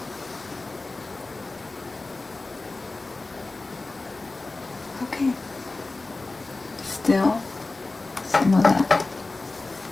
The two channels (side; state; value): right; quieter; 3.3 dB